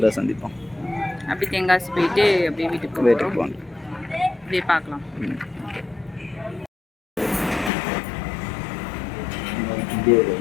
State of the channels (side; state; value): right; drops out; at 7.7 s